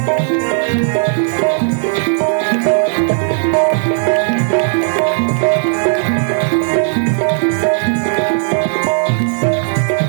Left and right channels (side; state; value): left; silent; digital silence